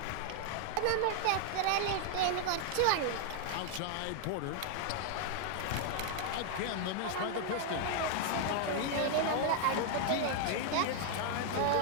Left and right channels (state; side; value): different; both; correlation 0.00